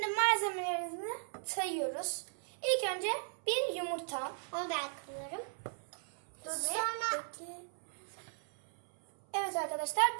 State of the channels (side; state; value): left; silent; 53 dB below the other